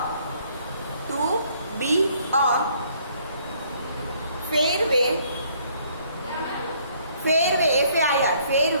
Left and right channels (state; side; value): inverted; both; correlation -0.64